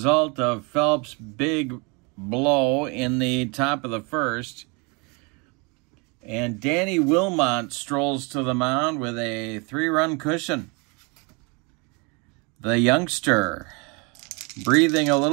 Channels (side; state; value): left; quieter; 30.5 dB